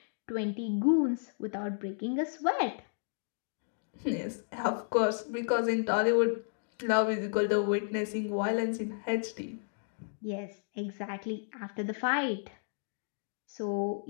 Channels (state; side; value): silent; right; digital silence